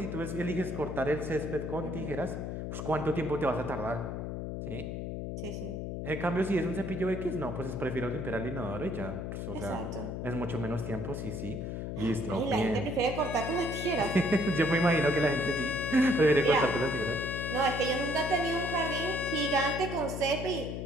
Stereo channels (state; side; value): noise; left; hum, 5 dB below the sound